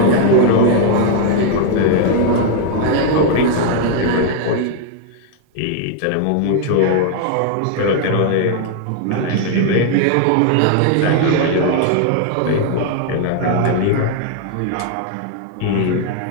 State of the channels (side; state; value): both; different; correlation 0.00